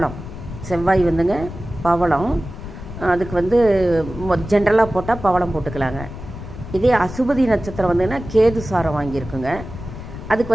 செவ்வாய் பவளம். அதுக்கு ஜென்ரலாக போட்டால் பவளம் போட்டுக்கலாங்க. இதே அசுபதி நட்சத்திரம் கேது சாரம் வாங்கியிருக்குங்க.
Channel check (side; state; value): left; noise; rumble, 11 dB below the sound